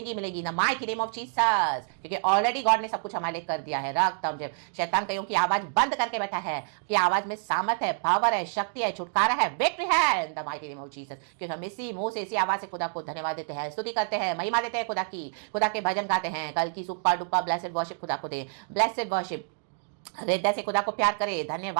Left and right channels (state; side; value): silent; left; 57 dB below the other